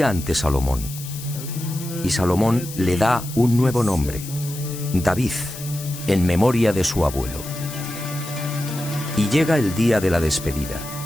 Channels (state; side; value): noise; left; hiss, 12 dB below the sound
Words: ante Salomón. Y Salomón le da un nuevo nombre, David, en memoria de su abuelo. Y llega el día de la despedida.